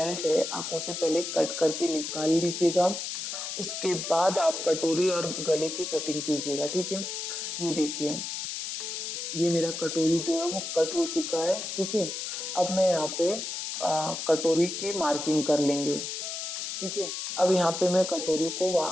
है आप उसे पहले कट करके निकाल लीजिएगा। उसके बाद आप कटोरी और गले की कटिंग कीजिएगा। ठीक है, ये देखिए ये मेरा कटोरी जो है वो कट हो चुका है। ठीक है, अब मैं यहाँ पे कटोरी की मार्किंग कर लेंगे। ठीक है, अब यहाँ पे मैं कटोरी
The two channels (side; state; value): left; noise; hiss, 5 dB below the sound